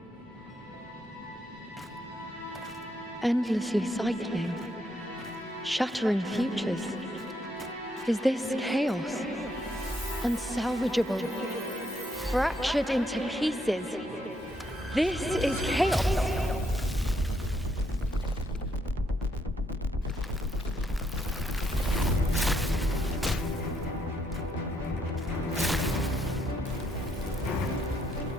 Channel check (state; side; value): normal; both; correlation 0.75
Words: Endlessly cycling, shattering futures. Is this chaos? Unsalvageable, fractured into pieces. This is chaos.